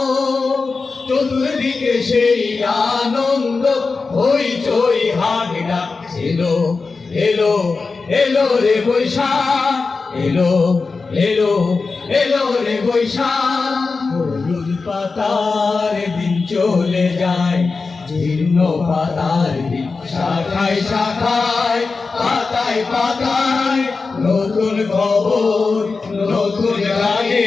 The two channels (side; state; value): right; quieter; 4.3 dB